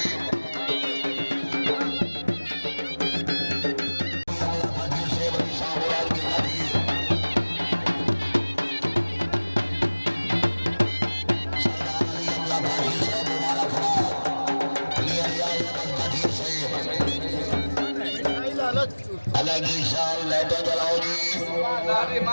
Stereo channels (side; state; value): both; inverted; correlation -1.00